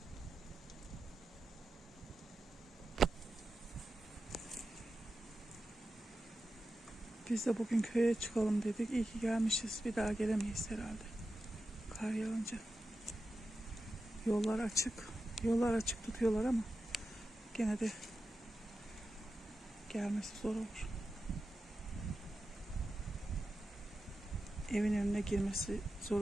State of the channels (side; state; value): both; normal; correlation 0.91